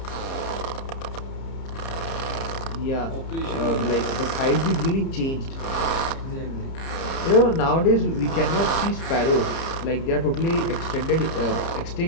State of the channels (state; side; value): late; right; 30 ms